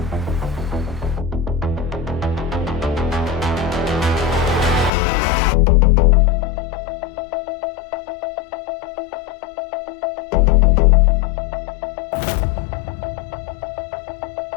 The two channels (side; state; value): right; drops out; at 4.9 s